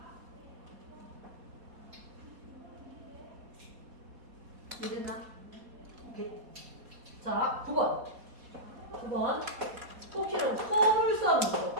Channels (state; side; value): late; left; 4.2 ms